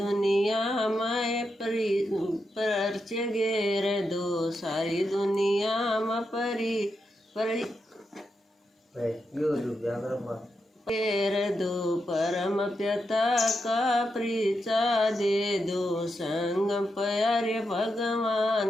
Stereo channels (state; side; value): normal; both; correlation 0.85